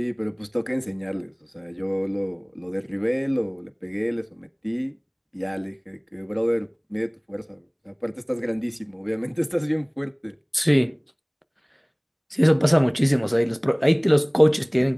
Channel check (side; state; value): both; identical; correlation 1.00